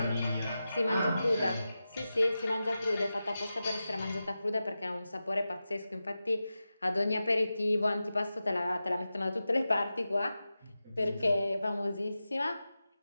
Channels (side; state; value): both; inverted; correlation -0.93